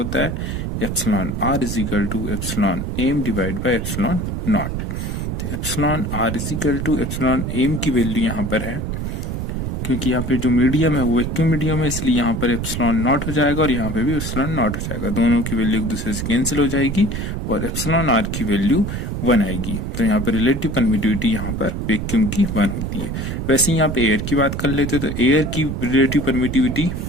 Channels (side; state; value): right; noise; rumble, 3 dB below the sound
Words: है epsilon are is equal to epsilon M divide by epsilon naught. तो epsilon are is equal to epsilon M की वैल्यू यहाँ पर है, क्योंकि यहाँ पे जो मीडियम है वो वैक्यूम मीडियम है, इसलिए यहाँ पर एप्सिलॉन नॉट हो जाएगा और यहाँ पे भी एप्सिलॉन नॉट हो जाएगा। दोनों की वैल्यू एक दूसरे से कैंसिल हो जाएगी और एप्सिलॉन आर की वैल्यू 1 आएगी। तो यहाँ पर रिलेटिव परमिटिविटी यहाँ पर वैक्यूम की 1 होती है। वैसे यहाँ पे एयर की बात कर लेते तो एयर की रिलेटिव परमिटिविटी,